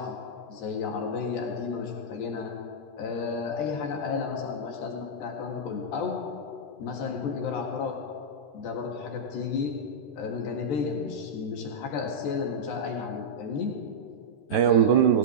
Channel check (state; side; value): late; right; 13 ms